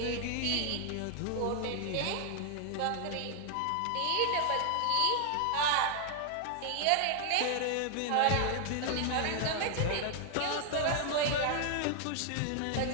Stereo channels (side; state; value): both; different; correlation 0.00